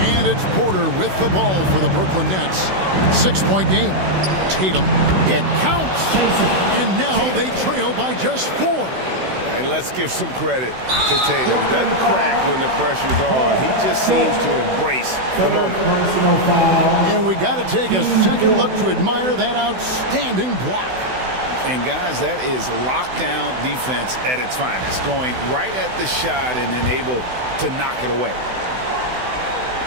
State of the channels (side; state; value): left; late; 16 ms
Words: And it's Porter with the ball for the Brooklyn Nets. 6-point game. Tatum. It counts. And now they trail by just 4. And let's give some credit to Tatum. Doesn't crack when the pressure's on. He just seems to embrace the moment. And we got to take a second look to admire that outstanding block. And guys, that is lockdown defense at its finest. Going right at the shot and then able to knock it away.